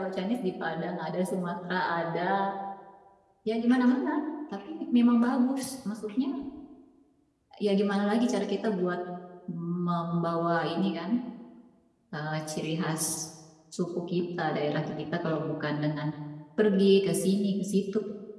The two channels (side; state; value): both; identical; correlation 1.00